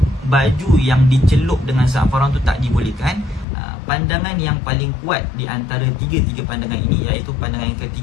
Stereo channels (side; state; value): right; drops out; at 3.5 s